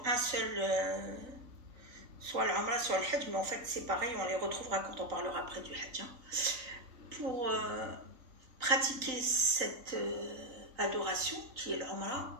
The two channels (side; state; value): left; late; 3.9 ms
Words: un seul, soit l'Umrah, soit le Hajj, mais en fait c'est pareil, on les retrouvera quand on parlera après du Hajj. Pour pratiquer cette adoration qui est